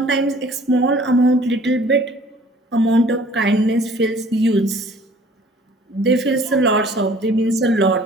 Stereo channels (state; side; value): normal; both; correlation 0.53